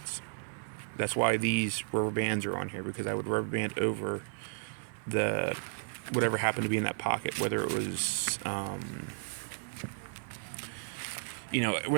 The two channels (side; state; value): left; silent; digital silence